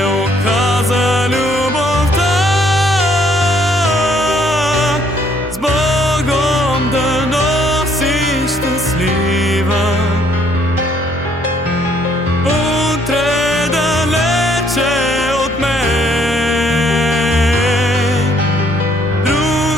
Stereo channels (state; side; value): normal; both; correlation 0.66